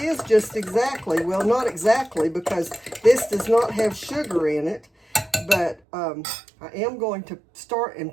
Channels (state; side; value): drops out; left; at 5.8 s